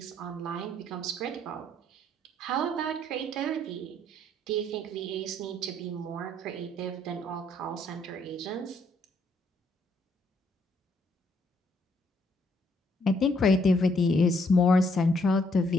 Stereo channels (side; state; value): both; normal; correlation 0.70